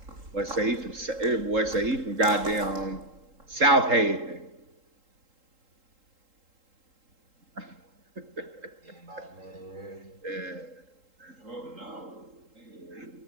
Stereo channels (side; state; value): left; late; 3.8 ms